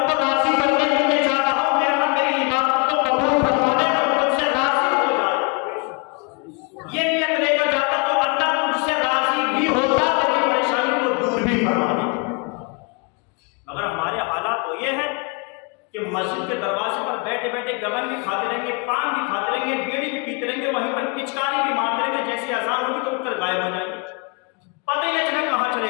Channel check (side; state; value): right; quieter; 32.9 dB